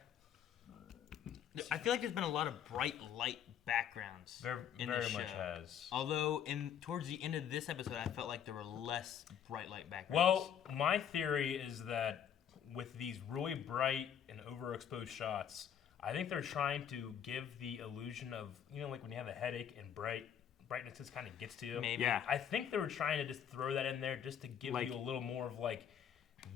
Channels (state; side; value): quieter; right; 8.9 dB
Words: I feel like there's been a lot of bright light backgrounds in Very the show. much has. Although, towards the end of this episode, I felt like there were less bright light backgrounds. Well, my theory is that with these really bright and overexposed shots, I think they're trying to give the illusion of, you know, like when you have a headache and brightness just kind of gets to you. Maybe. Yeah. I think they were trying to just throw that in there just to give Like- you a little more of like,